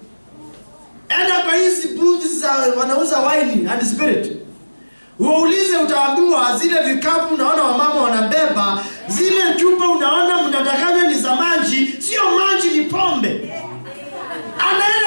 Enda kwa hizi booths za wanauza wine and spirit. Uulize, utaambiwa zile vikapu unaona wamama wanabeba, zile chupa unaona mnadanganya ni za maji, sio maji, ni pombe.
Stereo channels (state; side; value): inverted; both; correlation -1.00